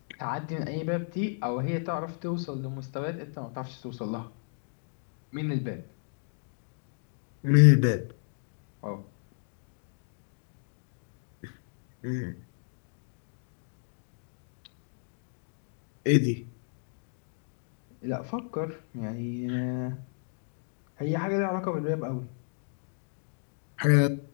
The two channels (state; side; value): silent; right; digital silence